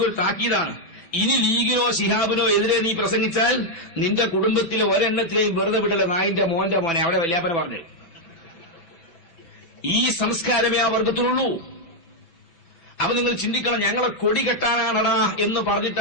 താക്കീതാണ്. ഇനി ലീഗിനോ ശിഹാബിനോ എതിരെ നീ പ്രസംഗിച്ചാൽ നിന്റെ കുടുംബത്തിലെ ഒരെണ്ണത്തിലെയും വെറുതെ വിടല നായിന്റെ മോന്റെ മോനെ. അവിടെ വല്യാപ്പന പറഞ്ഞു. ഈ സംസ്കാരമേ ആ വർഗത്തിലുള്ളൂ. അപ്പൊ നിങ്ങൾ ചിന്തിക്കണം, ഞങ്ങളെ കൊടി കെട്ടാനാണടാ എന്ന്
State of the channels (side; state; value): right; late; 6.0 ms